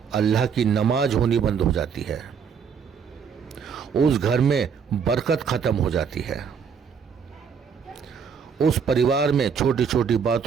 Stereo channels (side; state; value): left; quieter; 6.6 dB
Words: अल्लाह की नमाज होनी बंद हो जाती है, उस घर में बरकत खत्म हो जाती है। उस परिवार में छोटी छोटी